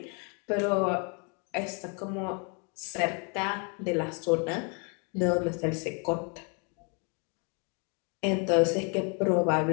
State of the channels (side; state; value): right; quieter; 36.2 dB